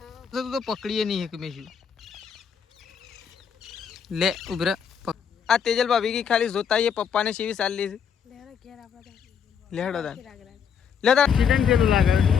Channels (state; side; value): quieter; right; 7.3 dB